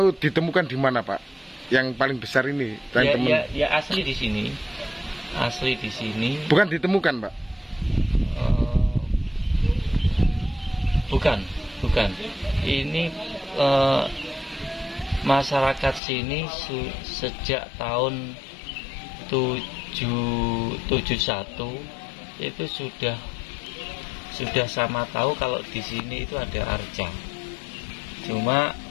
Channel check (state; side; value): drops out; right; at 16.0 s